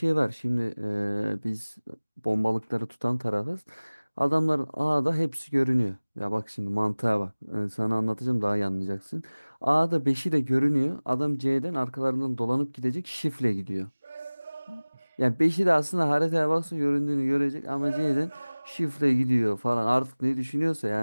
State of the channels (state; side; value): inverted; both; correlation -1.00